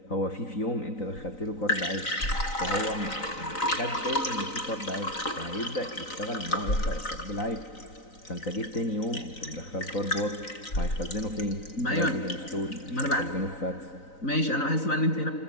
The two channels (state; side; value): late; right; 3.9 ms